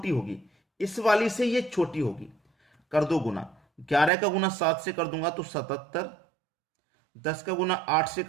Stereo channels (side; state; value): left; drops out; at 4.1 s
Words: होगी, इस वाली से ये छोटी होगी। कर दो गुना। 11 का गुना 7 से कर दूंगा तो 77। 10 का गुना 8 से